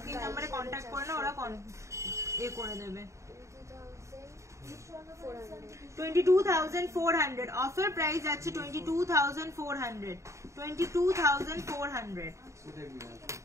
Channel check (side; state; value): left; late; 0.14 ms